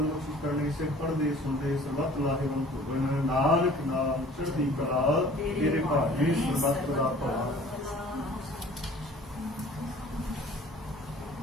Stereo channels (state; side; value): normal; both; correlation 0.49